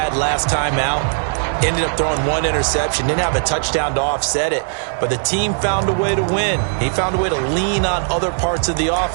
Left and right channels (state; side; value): silent; left; digital silence